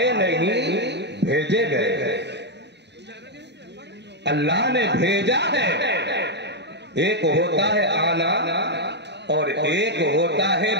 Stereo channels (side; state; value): left; late; 0.50 ms